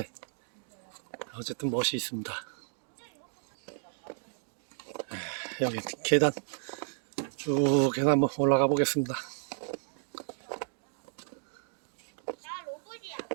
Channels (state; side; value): silent; left; 56 dB below the other